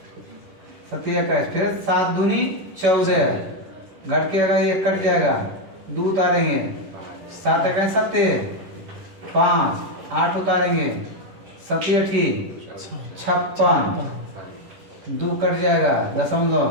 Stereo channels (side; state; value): left; late; 10 ms